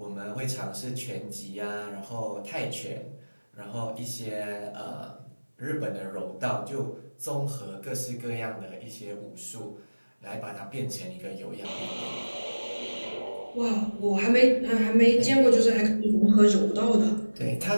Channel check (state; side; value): inverted; both; correlation -1.00